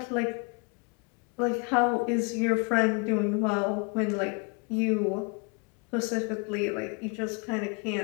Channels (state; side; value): quieter; right; 33.1 dB